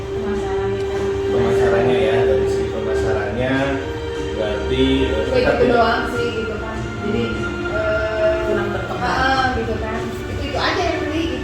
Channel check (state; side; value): identical; both; correlation 1.00